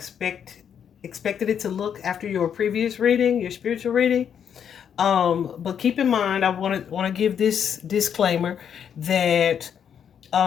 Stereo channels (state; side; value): quieter; right; 8.2 dB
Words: it to look after your previous reading, your spiritual reading. But keep in mind, I want to give this disclaimer that